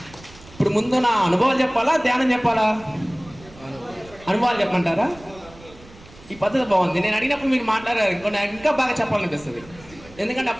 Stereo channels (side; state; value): right; noise; rumble, 22 dB below the sound